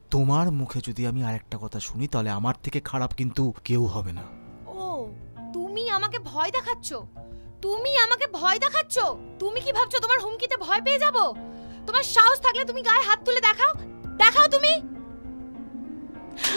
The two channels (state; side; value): inverted; both; correlation -1.00